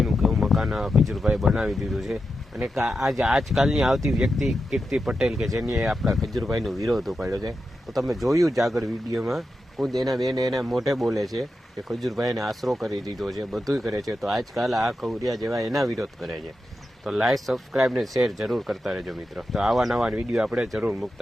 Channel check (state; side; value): normal; both; correlation 0.89